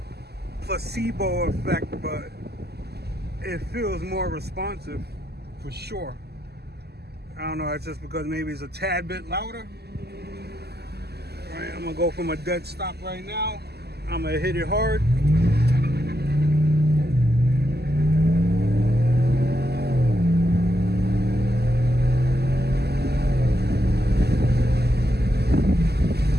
placebo effect, but it feels more responsive for sure. I don't know, it's just because maybe it's a tad bit louder. All right, I'm gonna go from a dead stop right now. I'm gonna hit it hard.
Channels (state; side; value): late; left; 0.47 ms